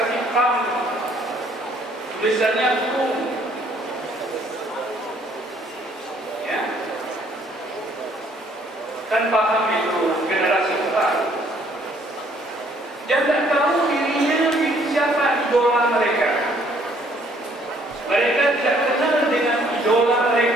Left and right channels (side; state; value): both; normal; correlation 0.63